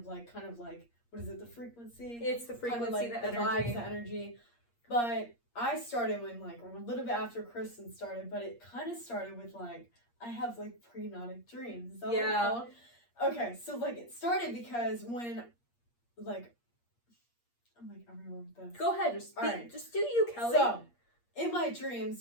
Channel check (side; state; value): right; late; 8.5 ms